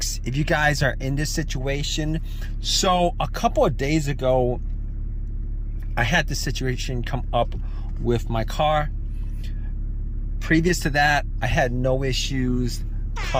if you guys are in this situation. So a couple of days ago, I had this situation come up with my car. Previous to that, I had no issues.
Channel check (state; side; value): identical; both; correlation 1.00